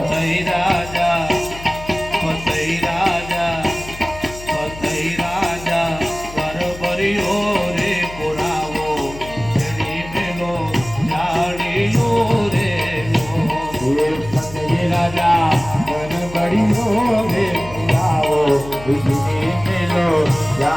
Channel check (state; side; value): noise; left; hum, 15 dB below the sound